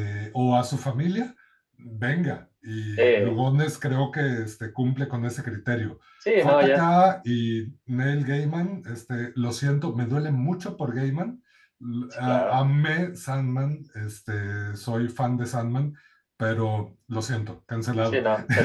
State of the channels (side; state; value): both; identical; correlation 1.00